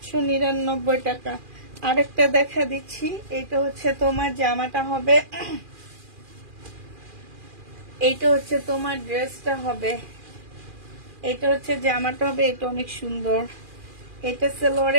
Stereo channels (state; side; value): late; left; 2.4 ms